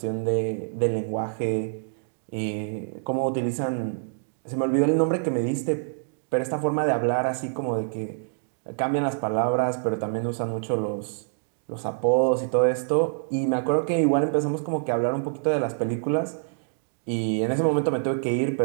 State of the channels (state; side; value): silent; left; digital silence